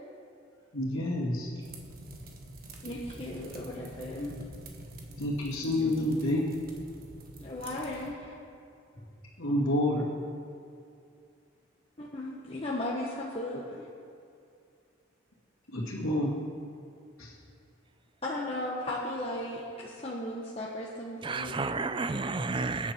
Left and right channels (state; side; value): normal; both; correlation 0.44